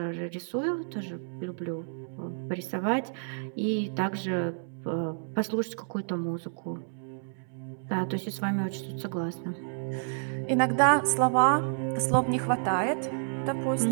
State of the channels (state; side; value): silent; left; 58 dB below the other